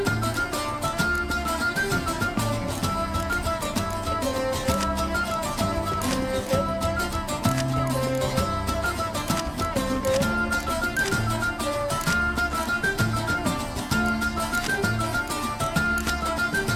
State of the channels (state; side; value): identical; both; correlation 1.00